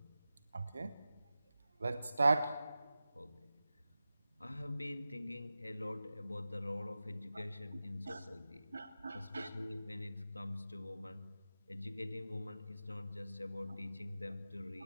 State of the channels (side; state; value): both; inverted; correlation -0.94